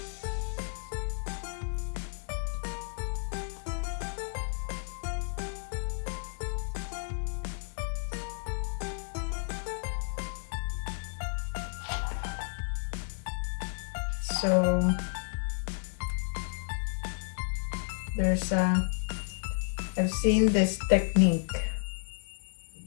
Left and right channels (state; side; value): silent; right; digital silence